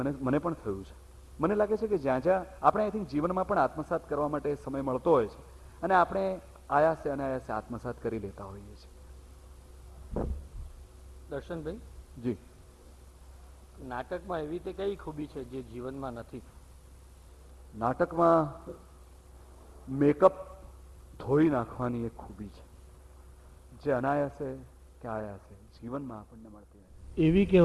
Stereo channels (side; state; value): both; identical; correlation 1.00